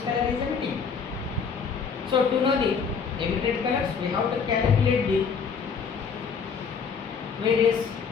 color is emitting. So to know the emitted colors, we have to calculate the various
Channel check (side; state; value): right; quieter; 5.9 dB